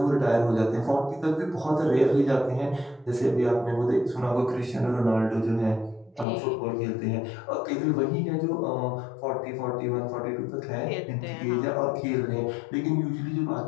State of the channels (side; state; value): right; drops out; at 6.2 s